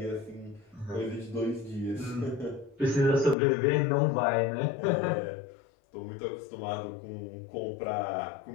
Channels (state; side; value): drops out; right; at 3.4 s